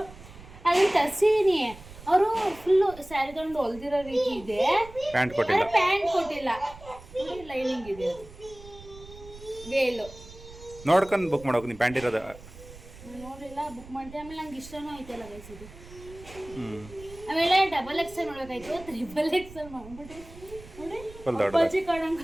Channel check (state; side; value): noise; right; rumble, 18 dB below the sound